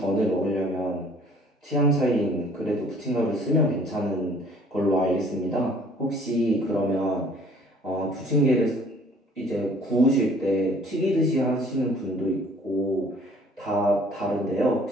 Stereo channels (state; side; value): normal; both; correlation 0.55